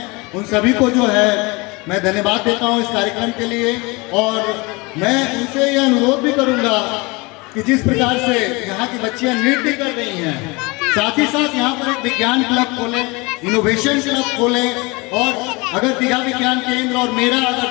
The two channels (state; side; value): quieter; right; 25.8 dB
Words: उन सभी को जो है मैं धन्यवाद देता हूं इस कार्यक्रम के लिए। और मैं उनसे यह अनुरोध भी करूंगा कि जिस प्रकार से यहाँ की बच्चियां नृत्य कर रही हैं, साथ ही साथ यहाँ पर एक विज्ञान क्लब खोलें, इनोवेशन क्लब खोलें, और अगर दीघा विज्ञान केंद्र और मेरा